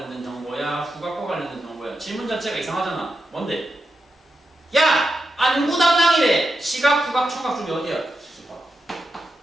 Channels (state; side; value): normal; both; correlation 0.88